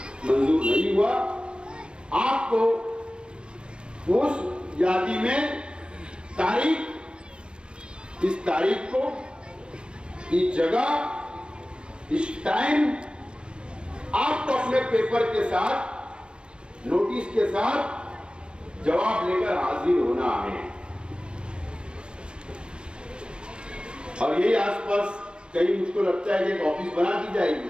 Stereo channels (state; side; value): late; left; 0.053 ms